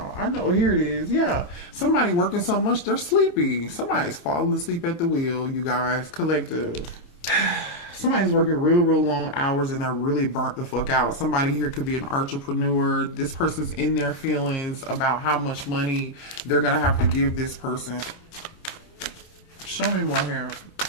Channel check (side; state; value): right; late; 28 ms